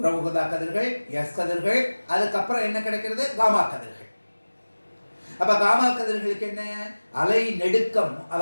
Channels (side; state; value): both; inverted; correlation -1.00